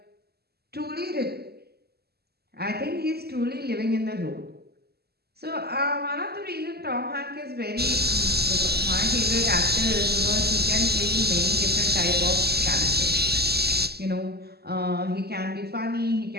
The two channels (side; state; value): left; late; 0.46 ms